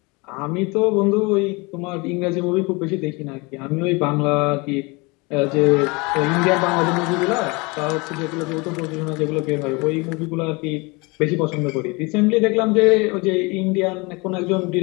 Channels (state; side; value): quieter; right; 26.9 dB